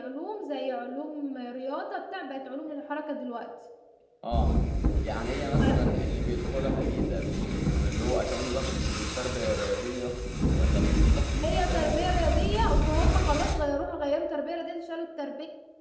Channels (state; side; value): identical; both; correlation 1.00